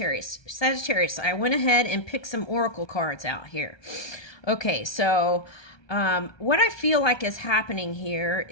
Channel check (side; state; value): right; late; 1.3 ms